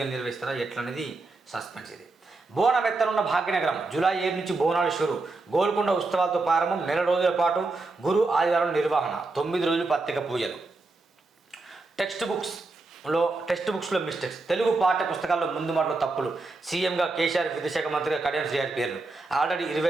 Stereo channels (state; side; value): quieter; left; 3.4 dB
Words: నిర్వహిస్తారా ఎట్లనేది సస్పెన్స్. ఇది బోనం ఎత్తనున్న భాగ్యనగరం. జూలై 7 నుంచి బోనాలు షురు. గోల్కొండ ఉత్సవాలతో ప్రారంభం. 1 నెల రోజుల పాటు గురు ఆదివారం నిర్వహణ. 9 రోజులు ప్రత్యేక పూజలు. టెక్స్ట్ బుక్స్లో మిస్టేక్స్. తెలుగు పాఠ్య పుస్తకాల్లో ముందు మాటలో తప్పులు. సీఎంగా కేసీఆర్, విద్యాశాఖ మంత్రిగా కడియం శ్రీహరి పేర్లు. ఆల్రెడీ